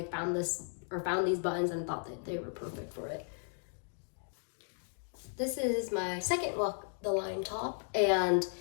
found these buttons and thought that they were perfect for it. This is my second Walk the Line top, and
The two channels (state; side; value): silent; right; 54 dB below the other